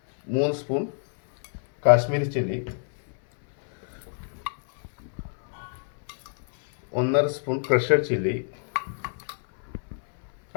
spoon Kashmiri chilli, 1.5 spoon crushed chilli,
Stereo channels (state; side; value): silent; right; 61 dB below the other